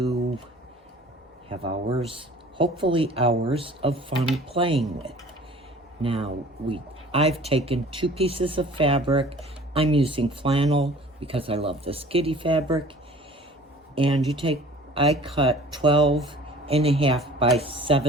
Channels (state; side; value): normal; both; correlation 0.47